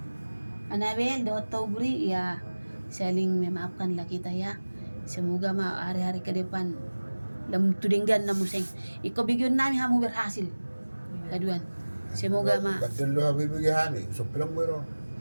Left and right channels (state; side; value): inverted; both; correlation -1.00